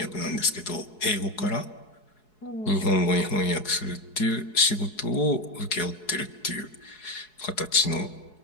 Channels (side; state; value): right; late; 4.7 ms